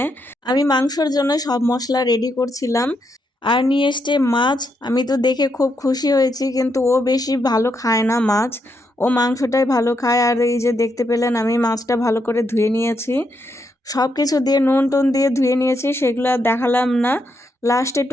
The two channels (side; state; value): both; normal; correlation 0.79